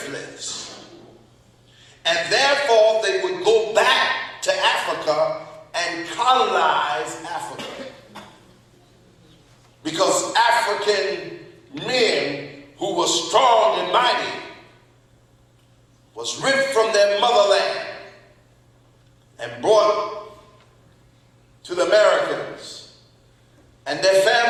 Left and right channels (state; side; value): identical; both; correlation 1.00